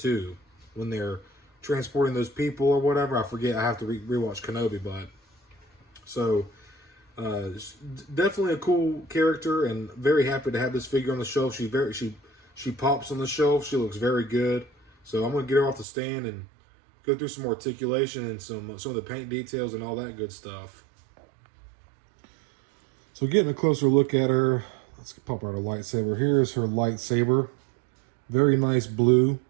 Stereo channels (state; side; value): drops out; left; at 15.9 s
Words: when they're transporting those people or whatever. I forget. I have to rewatch Kenobi, but so definitely a cool character, and very happy to have this figure on the shelf. She pops on the shelf. She looks very good. So I'm going to get her off the stand and go through some articulation and some of the paint details and all that good stuff. So getting a closer look at her, let's pop out her lightsaber. Here's her lightsaber. Very nice blue.